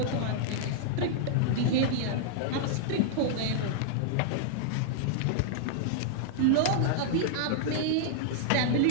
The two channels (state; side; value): different; both; correlation -0.01